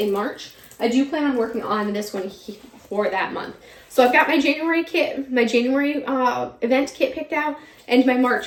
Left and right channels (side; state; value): both; identical; correlation 1.00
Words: March. I do plan on working on this one for that month. So I've got my January kit, my January event kit picked out, and my March